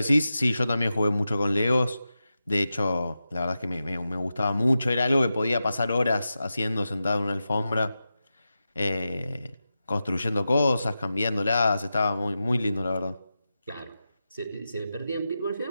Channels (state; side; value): inverted; both; correlation -0.92